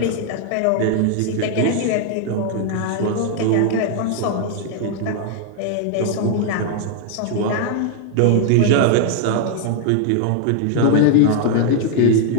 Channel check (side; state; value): both; different; correlation 0.00